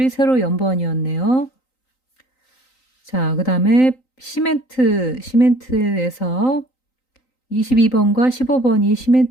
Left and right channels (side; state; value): right; late; 3.9 ms